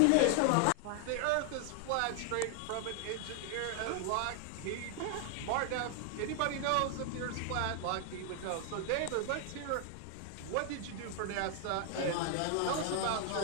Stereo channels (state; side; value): different; both; correlation 0.00